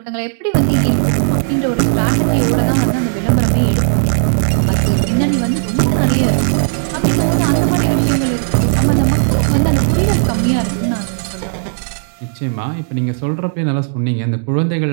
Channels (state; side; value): silent; left; digital silence